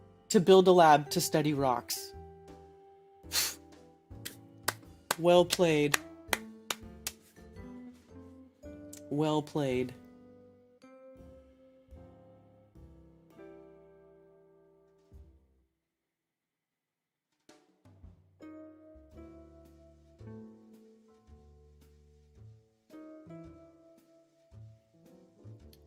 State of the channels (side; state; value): both; identical; correlation 1.00